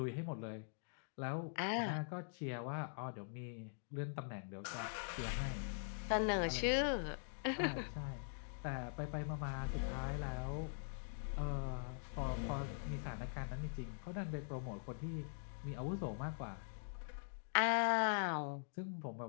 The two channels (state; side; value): silent; right; digital silence